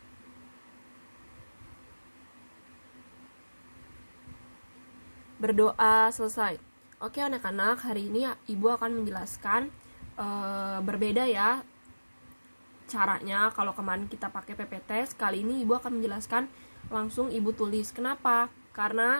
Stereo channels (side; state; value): both; inverted; correlation -1.00